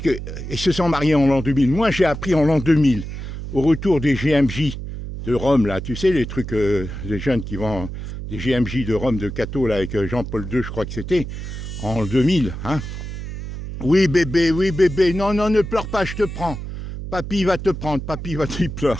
ils se sont mariés en l'an 2000. Moi, j'ai appris en l'an 2000, au retour des GMJ de Rome, là, tu sais, les trucs, les jeunes qui vont, des GMJ de Rome, de Cato, là, avec Jean-Paul II, je crois que c'était, en 2000. Hein. Oui, bébé, non, non, ne pleure pas, je te prends. Papy va te prendre, papy va te pleurer.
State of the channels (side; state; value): right; noise; hum, 8 dB below the sound